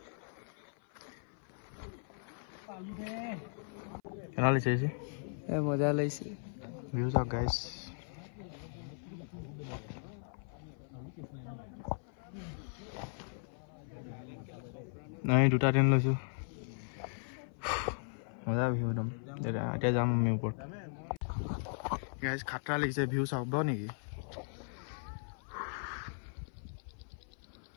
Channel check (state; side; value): silent; right; 53 dB below the other